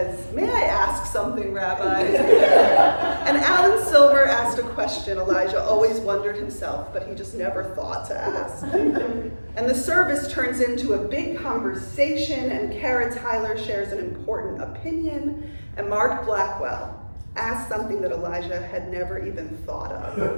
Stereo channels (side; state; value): both; inverted; correlation -1.00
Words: "May I ask something, Rabbi?" And Alan Silver asked a question Elijah always wondered himself, but he just never thought to ask. And the service turns into a big conversation, and Kara Tyler shares an important opinion, and Mark Blackwell asks something that Elijah had never even thought of.